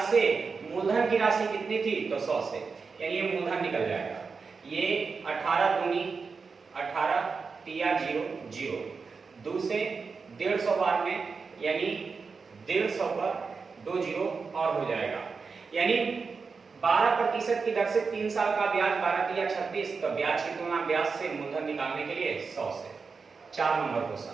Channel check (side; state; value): left; quieter; 4.9 dB